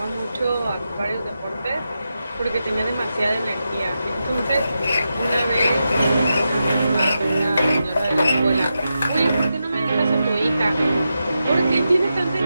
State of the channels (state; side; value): inverted; both; correlation -0.88